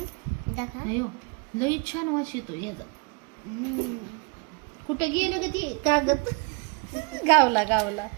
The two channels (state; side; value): quieter; left; 32.0 dB